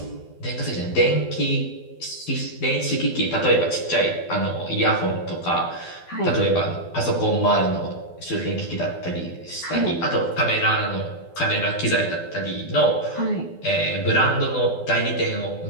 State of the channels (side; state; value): right; late; 12 ms